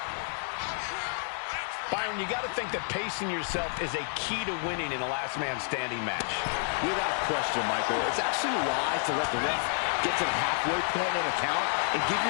Byron, you got to think that pacing yourself is a key to winning in a last man standing match. Without question, Michael. It's actually wise to let the ref get to the halfway point in a count and give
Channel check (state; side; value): silent; right; 58 dB below the other